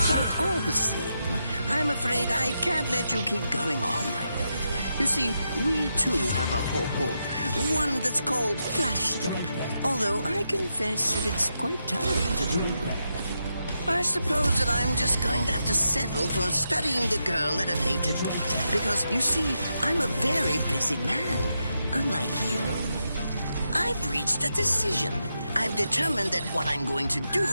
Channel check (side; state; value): both; inverted; correlation -0.85